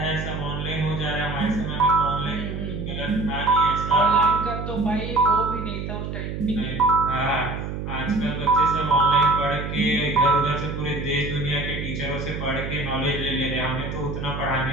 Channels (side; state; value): right; noise; hum, 6 dB below the sound